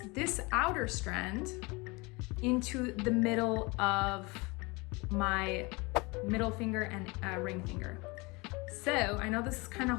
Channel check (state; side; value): quieter; right; 26.0 dB